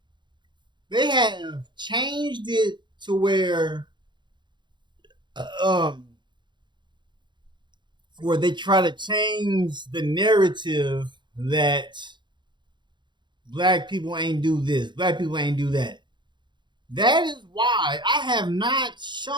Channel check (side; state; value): left; late; 0.22 ms